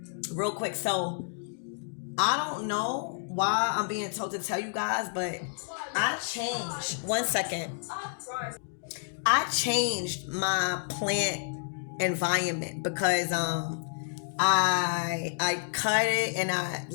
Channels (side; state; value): right; silent; digital silence